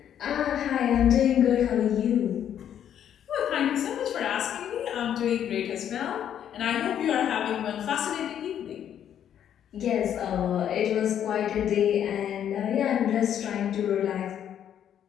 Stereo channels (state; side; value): quieter; right; 9.7 dB